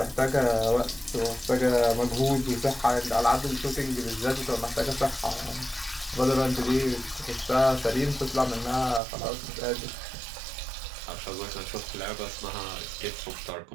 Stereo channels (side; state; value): left; drops out; at 9.0 s